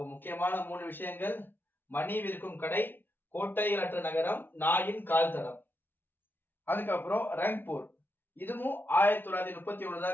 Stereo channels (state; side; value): late; right; 0.098 ms